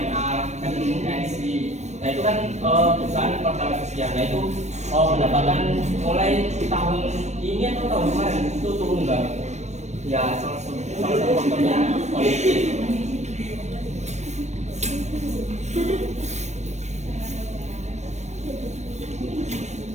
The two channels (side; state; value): left; late; 0.33 ms